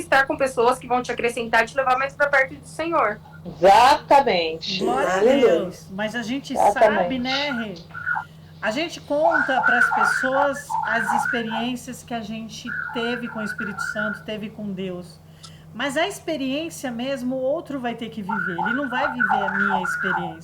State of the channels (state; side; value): identical; both; correlation 1.00